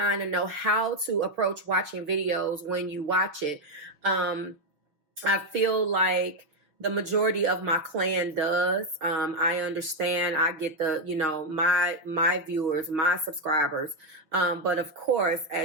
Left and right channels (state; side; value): late; left; 6.2 ms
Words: and know how to approach watching videos when you watch it. I feel like the majority of my clan does. I understand. I get my viewers, my subscribers. But of course,